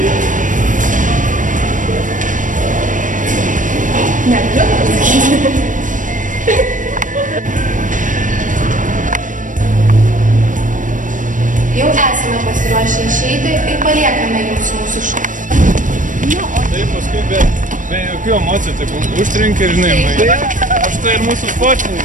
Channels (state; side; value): late; left; 0.38 ms